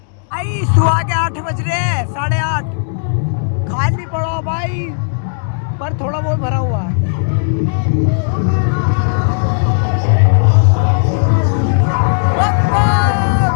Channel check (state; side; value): silent; right; digital silence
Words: आई सुबह के 8 बज रहे हैं, 8:30। खाली पड़ा भाई, पर थोड़ा बहुत भरा हुआ है।